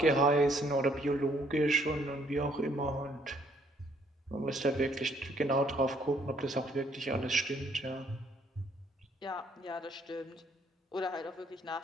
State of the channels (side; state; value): both; normal; correlation 0.66